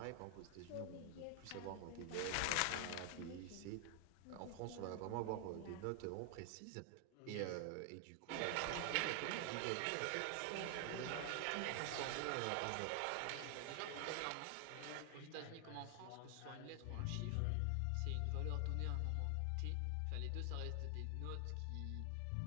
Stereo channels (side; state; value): both; different; correlation 0.00